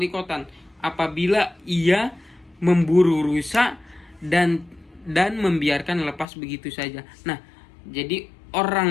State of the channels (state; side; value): drops out; right; at 6.2 s